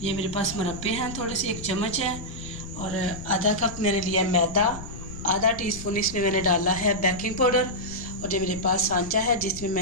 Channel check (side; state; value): left; noise; rumble, 13 dB below the sound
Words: ये मेरे पास मुरब्बे हैं थोड़े से, 1 चम्मच है और आधा कप मैंने लिया मैदा, आधा टीस्पून इसमें मैंने डाला है बेकिंग पाउडर और ये मेरे पास सांचा है जिसमें